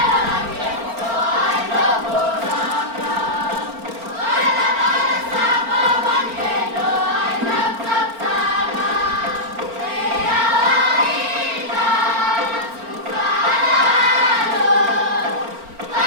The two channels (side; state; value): left; late; 4.4 ms